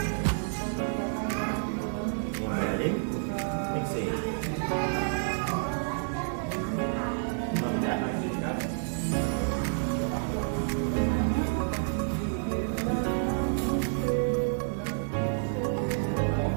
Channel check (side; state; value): left; silent; digital silence